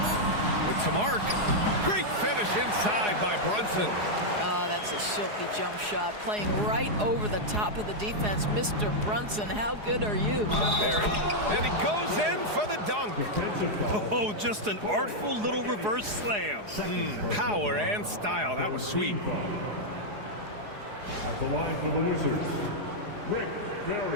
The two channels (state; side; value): late; left; 4.8 ms